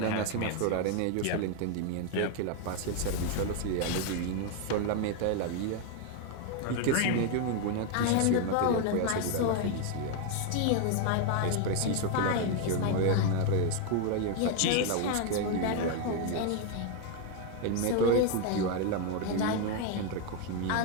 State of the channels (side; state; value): both; different; correlation 0.01